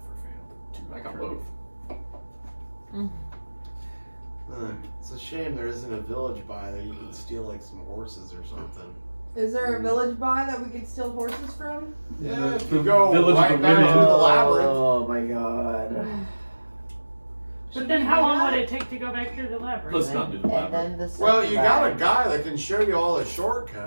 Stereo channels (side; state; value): both; inverted; correlation -1.00